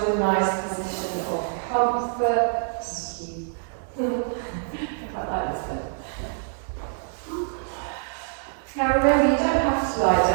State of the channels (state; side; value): silent; left; digital silence